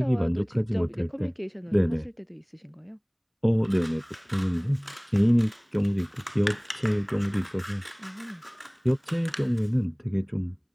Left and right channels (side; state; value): both; identical; correlation 1.00